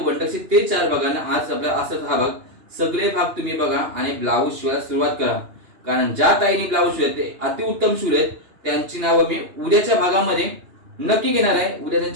टच ते 4 बघा. आणि आज आपला असं हा भाग, सगळे भाग तुम्ही बघा आणि ब्लाऊज शिवायला सुरुवात करा. कारण ज्या ताईने ब्लाऊज शिवले ते अतिउत्तम शिवलेत, त्यांची नावं मी उद्याच्या भागामध्ये नक्की घेणार आहे. उद्या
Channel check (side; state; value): left; late; 2.8 ms